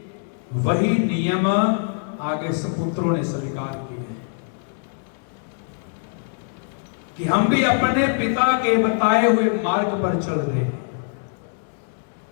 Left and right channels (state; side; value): silent; right; digital silence